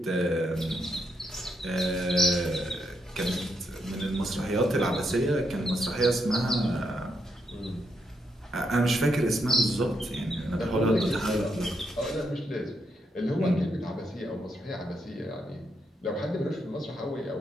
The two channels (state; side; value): normal; both; correlation 0.79